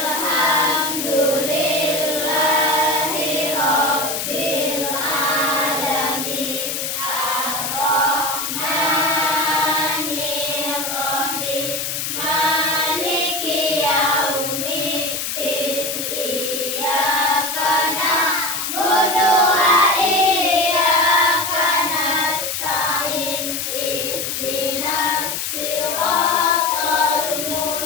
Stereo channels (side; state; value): left; noise; hiss, 3 dB below the sound